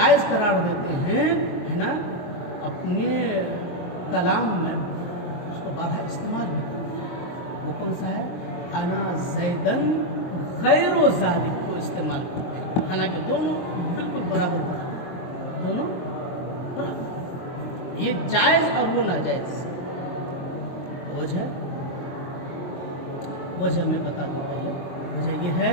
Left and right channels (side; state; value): right; late; 23 ms